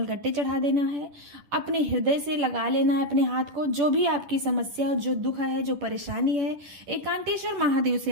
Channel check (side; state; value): left; late; 10 ms